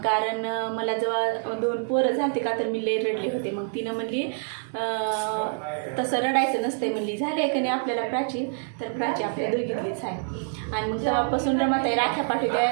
कारण मला जेव्हा 2 पोरं झालते का तर मी लई रडले होते. मग तिनं म्हणली तसं रडायचं नसतं म्हणली. झाले का नाही आपल्याला प्राची, तर प्राची आपल्या दोघीतलीच आहे. आणि मग तेव्हापासून रमाताई राख्या पाठवते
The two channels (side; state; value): left; silent; digital silence